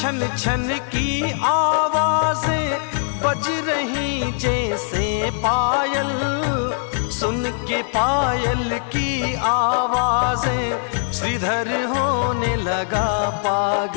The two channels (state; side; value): silent; right; 65 dB below the other